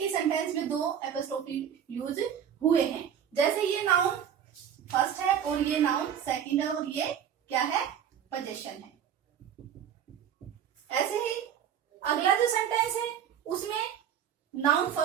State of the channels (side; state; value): left; quieter; 9.0 dB